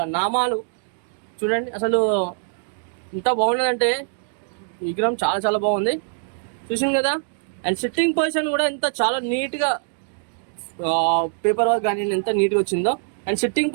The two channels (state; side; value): silent; left; digital silence